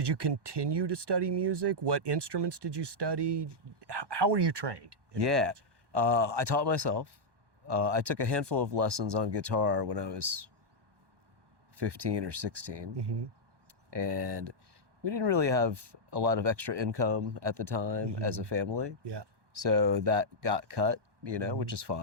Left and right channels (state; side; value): late; left; 1.2 ms